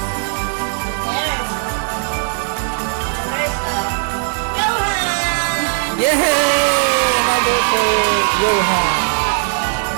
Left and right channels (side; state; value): left; silent; digital silence